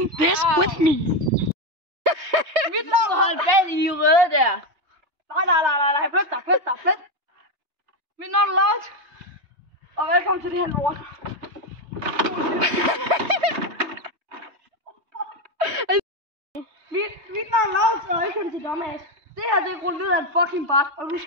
this with me. Mit navn er holdt bag i røde der. Nej, flyt. Mit navn er Laut, og velkommen til det her lort. Mit navn er Laut, og velkommen til Dumbass. Det her, det er rullet ned af en fucking bart, og nu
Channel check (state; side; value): late; left; 3.2 ms